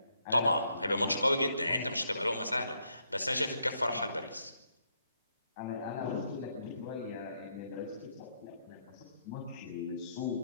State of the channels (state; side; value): inverted; both; correlation -0.75